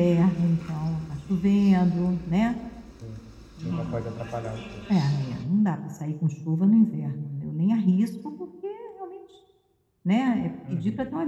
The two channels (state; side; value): identical; both; correlation 1.00